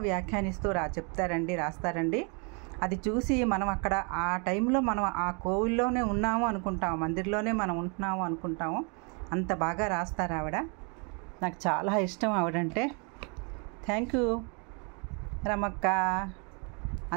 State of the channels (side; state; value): left; quieter; 34.9 dB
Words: వ్యాఖ్యానిస్తూ చెప్తారండి, రాస్తారండి. అది చూసి మనం అక్కడ ఆ టైంలో మనం ఆ కోవిల్లోనే ఉన్నాము అనుకుంటాము, మందిర్లోనే మనం ఉంటున్నాము అనుకుంటాము. అంత బాగా రాస్తారు ఆవిడ. నాకు చాలా ఇష్టం ఆవిడంటే. Thank you Ramakka.